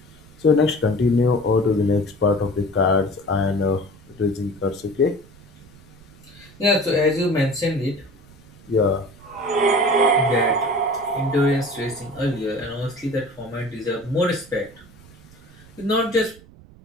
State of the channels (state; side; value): noise; right; rumble, 23 dB below the sound